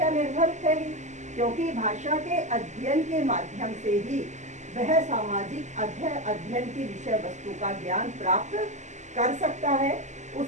निर्भर है ही, क्योंकि भाषा के अध्ययन के माध्यम से ही वह सामाजिक अध्ययन की विषय वस्तु का ज्ञान प्राप्त कर सकता है।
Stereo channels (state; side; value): late; left; 0.34 ms